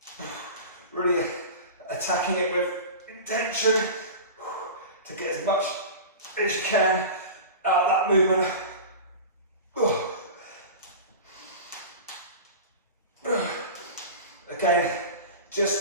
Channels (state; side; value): inverted; both; correlation -0.31